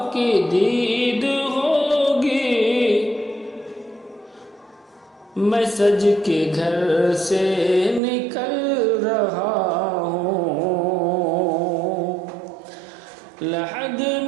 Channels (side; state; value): left; drops out; at 8.0 s